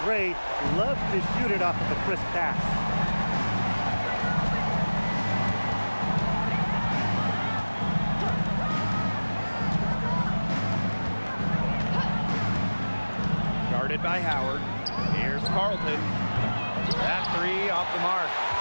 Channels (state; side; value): inverted; both; correlation -1.00